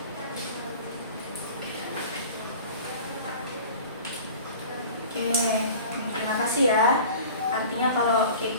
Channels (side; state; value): both; inverted; correlation -0.41